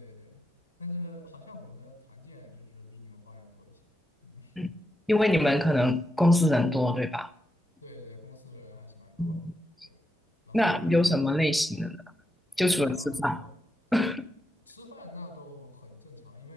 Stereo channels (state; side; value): normal; both; correlation 0.86